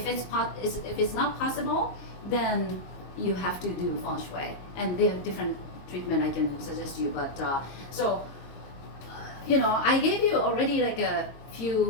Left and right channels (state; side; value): late; right; 22 ms